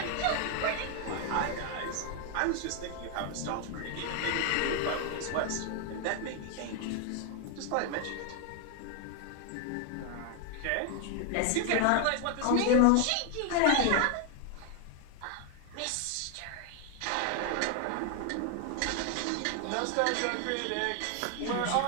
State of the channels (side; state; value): both; different; correlation 0.00